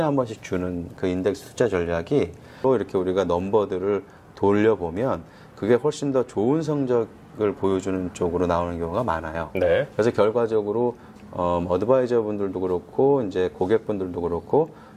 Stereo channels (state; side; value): identical; both; correlation 1.00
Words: 번씩 주는 그 인덱스 투자 전략이 또 이렇게 우리가 넘버들을 돌려보면 그게 훨씬 더 좋은 성적을 보여주는 쪽으로 나오는 경우가 많아요. 네. 그래서 결과적으로 어드바이저 분들도 그렇고 이제 고객분들도 그렇고